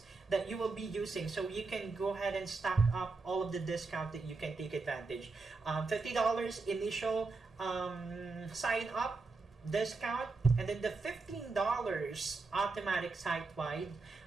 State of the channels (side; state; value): left; quieter; 3.9 dB